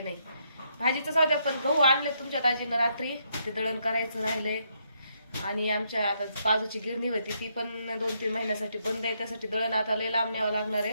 नाही. भाजीचं जाऊ द्या, पण गहू आणले तुमच्या दाजीनं रात्री, ते दळण करायचं राहिलंय. आणि आमच्या आता बाजूची गिरणी होती, ती पण 2-3 महिन्यासाठी बंद आहे, त्यासाठी दळण आता लय लांब न्यावं लागणार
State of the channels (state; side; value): inverted; both; correlation -0.75